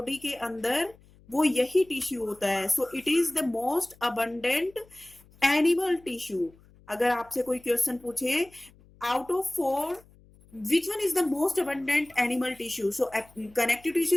के अंदर वो यही टिश्यू होता है। So it is the most abundant animal tissue. अगर आपसे कोई क्वेश्चन पूछे out of 4 which one is the most abundant animal tissue, so connective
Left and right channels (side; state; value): left; noise; hum, 27 dB below the sound